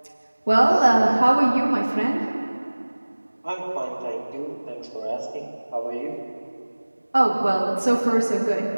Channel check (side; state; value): both; inverted; correlation -1.00